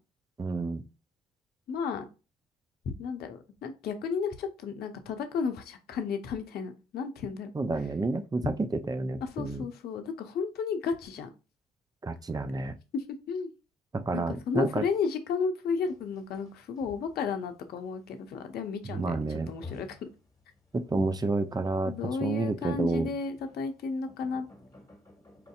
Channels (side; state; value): both; normal; correlation 0.67